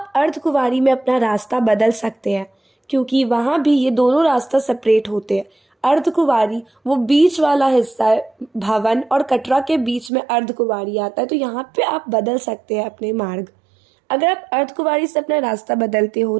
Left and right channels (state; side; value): drops out; left; at 10.1 s